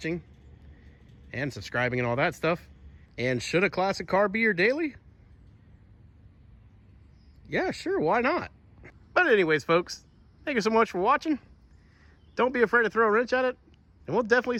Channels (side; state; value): both; identical; correlation 1.00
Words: and subscribing and all that stuff. And should a classic car be your daily? Yeah, sure, why not? But anyways, folks, thank you so much for watching. Don't be afraid to throw a wrench at it, and we'll definitely